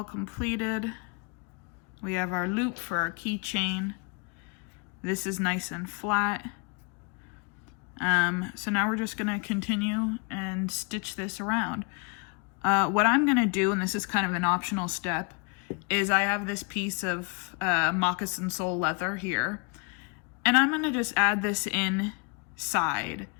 completed. We have our loop for our keychain. This is nice and flat. So now we're just gonna continue and stitch this around. What I'm gonna do, and this is kind of an optional step, is I have this piece of moccasin sole leather here, and I'm gonna just add this inside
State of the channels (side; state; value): right; quieter; 33.5 dB